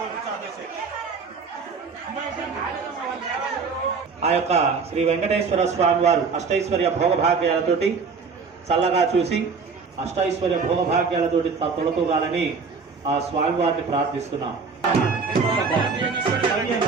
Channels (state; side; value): quieter; left; 5.0 dB